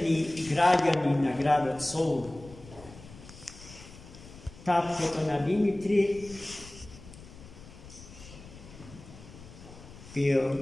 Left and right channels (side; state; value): left; noise; rumble, 18 dB below the sound